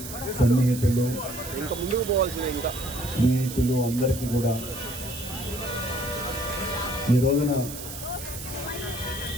సన్నిహితులు, ఇంకా ముందుకు పోవాల్సిందే. ఇంకా స్నేహితులు అందరికీ కూడా ఈ రోజున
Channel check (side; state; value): right; noise; hiss, 10 dB below the sound